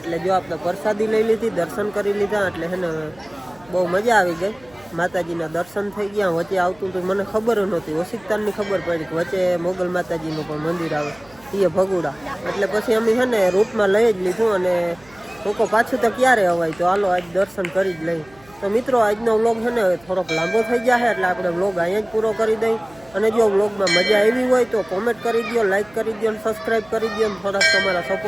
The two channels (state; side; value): noise; right; hum, 26 dB below the sound